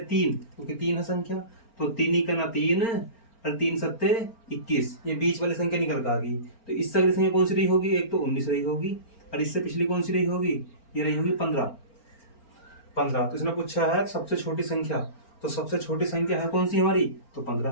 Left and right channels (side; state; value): right; late; 4.4 ms